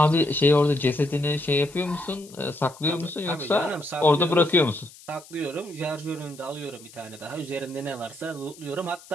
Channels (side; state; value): left; noise; hiss, 21 dB below the sound